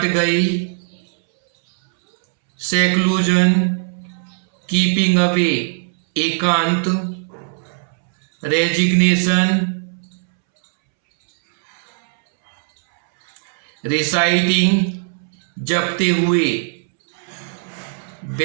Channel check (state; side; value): silent; left; 67 dB below the other